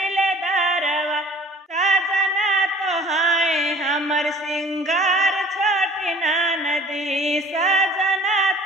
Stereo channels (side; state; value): both; normal; correlation 0.49